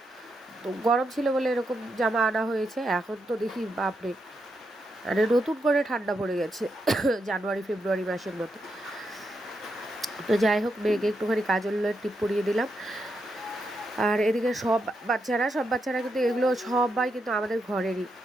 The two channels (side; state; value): both; normal; correlation 0.83